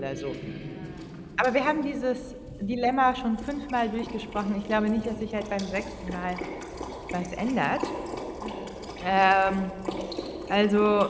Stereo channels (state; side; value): identical; both; correlation 1.00